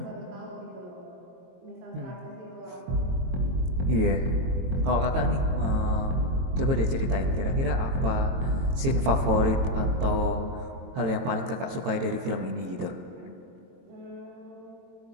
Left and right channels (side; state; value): left; late; 22 ms